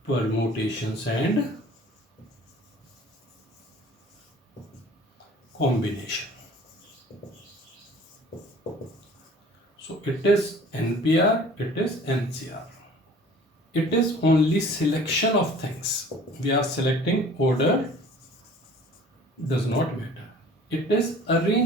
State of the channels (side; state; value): both; normal; correlation 0.48